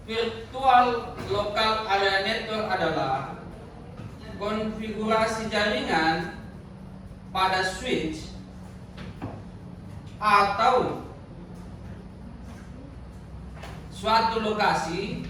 Virtual Local Area Network adalah konfigurasi jaringan pada switch atau suatu lokasi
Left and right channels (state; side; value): identical; both; correlation 1.00